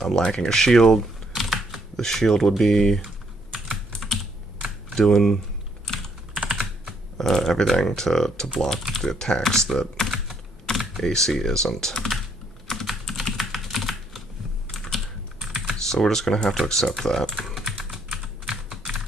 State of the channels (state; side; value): normal; both; correlation 0.71